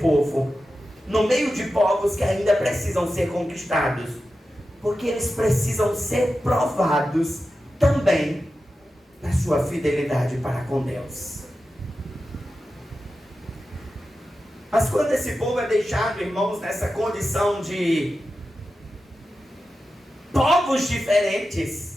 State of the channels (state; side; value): normal; both; correlation 0.92